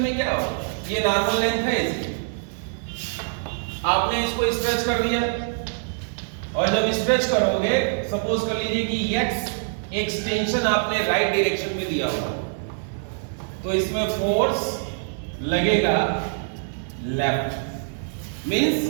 में क्या हो, ये नॉर्मल लेंथ है इसकी, आपने इसको स्ट्रेच कर दिया और जब स्ट्रेच करोगे सपोज कर लीजिए कि x एक्सटेंशन आपने राइट डायरेक्शन में दिया हुआ, तो इसमें फोर्स लगेगा left means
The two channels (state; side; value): silent; left; digital silence